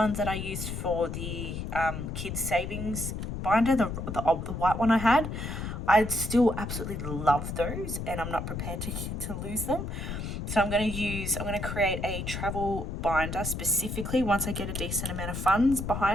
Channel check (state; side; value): noise; left; rumble, 5 dB below the sound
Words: that I used for the kids savings binder, the white one I had? I'd still absolutely love those, and I'm not prepared to lose them. So I'm going to create a travel binder specifically once I get a decent amount of funds